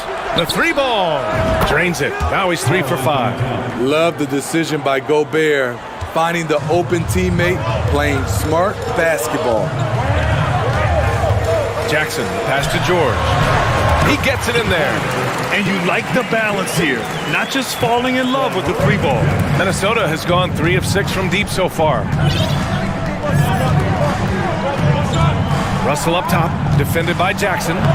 The 3-ball. Drains it. Now he's 3 for 5. Love the decision by Gobert, finding the open teammate, playing smart basketball. Jackson, pass to George. He gets it in there. And you like the balance here, not just falling in love with the 3-ball. Minnesota has gone 3 of 6 from deep so far. Russell up top, defended by Jackson.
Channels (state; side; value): identical; both; correlation 1.00